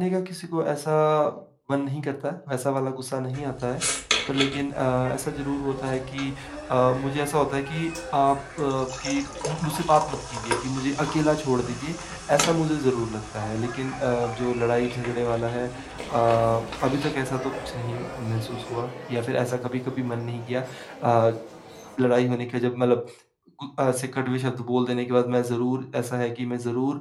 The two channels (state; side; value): identical; both; correlation 1.00